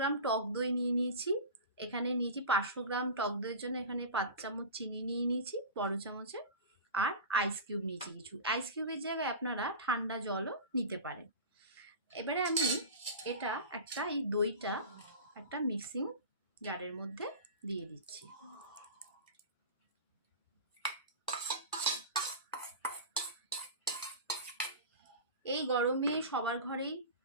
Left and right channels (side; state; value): both; inverted; correlation -0.31